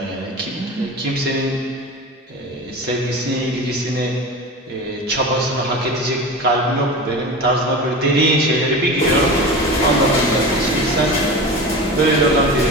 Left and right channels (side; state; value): both; normal; correlation 0.30